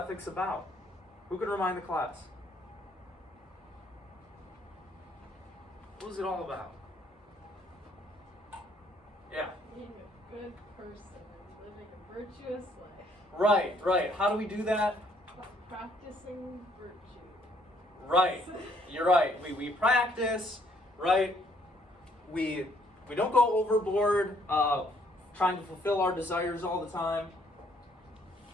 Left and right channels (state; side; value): normal; both; correlation 0.66